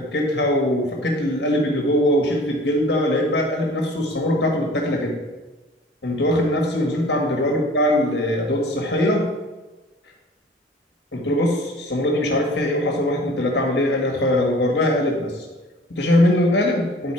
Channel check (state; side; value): normal; both; correlation 0.47